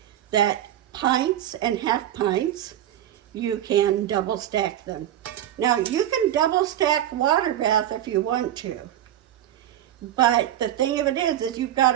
that pints and half pints, you can double stack them. Now you can double stack water bath if you want to, but the thing of it is you've got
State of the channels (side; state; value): left; quieter; 11.9 dB